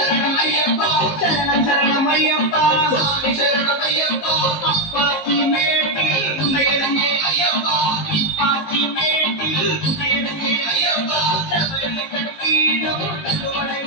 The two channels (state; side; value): late; right; 19 ms